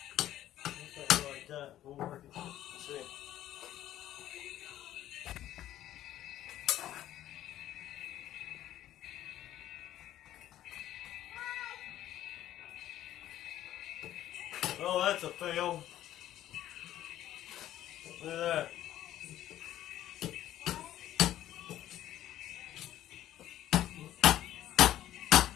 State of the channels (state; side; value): quieter; right; 12.8 dB